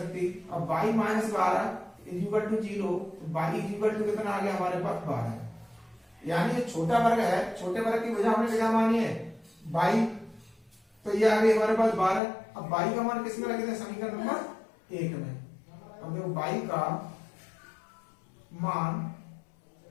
अब y minus 12 equal to 0, y equal to कितना आ गया हमारे पास 12, यानी ये छोटा वर्ग है, छोटे वर्ग की भुजा हमने क्या मानी है बाई, तो ये आ गई हमारे पास 12। अब बाई का मान किसमें रखे थे समीकरण नंबर 1 में। अब देखो बाई का मान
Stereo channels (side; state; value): right; drops out; at 12.2 s